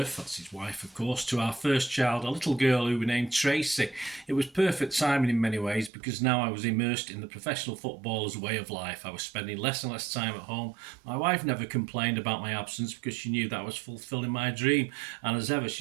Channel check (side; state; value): left; drops out; at 5.9 s